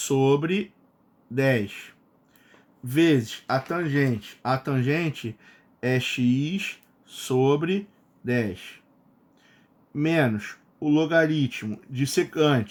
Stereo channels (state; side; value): identical; both; correlation 1.00